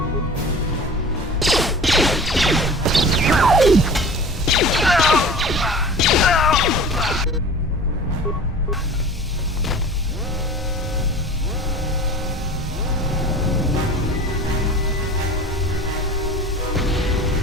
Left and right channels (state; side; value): normal; both; correlation 0.39